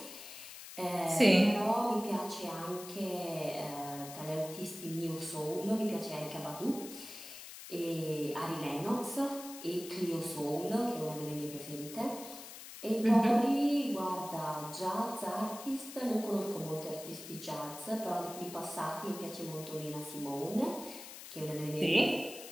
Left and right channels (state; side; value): noise; left; hiss, 13 dB below the sound